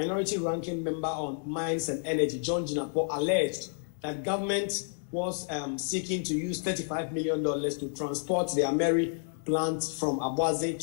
ranking member on mines and energy, John Jinapo, alleged that government was seeking to use $35 million to transport the Ameri plant from Abuaze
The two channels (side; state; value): right; silent; digital silence